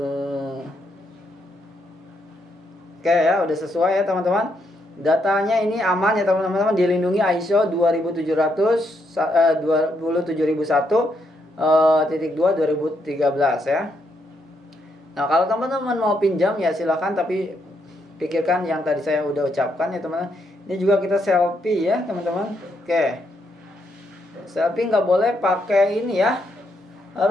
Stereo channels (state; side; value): normal; both; correlation 0.77